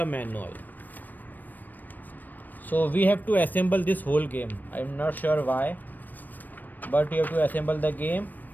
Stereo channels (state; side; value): late; right; 0.088 ms